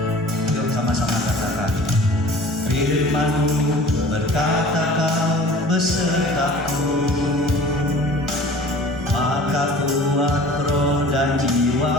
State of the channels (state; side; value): normal; both; correlation 0.45